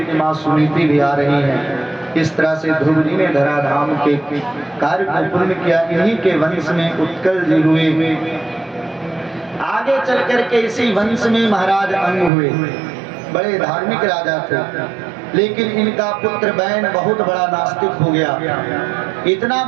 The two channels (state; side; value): drops out; left; at 12.3 s